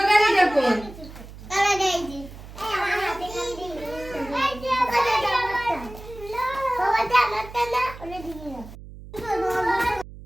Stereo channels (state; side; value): noise; right; hum, 16 dB below the sound